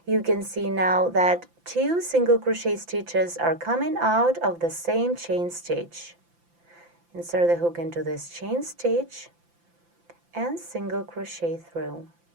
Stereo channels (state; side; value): late; left; 5.9 ms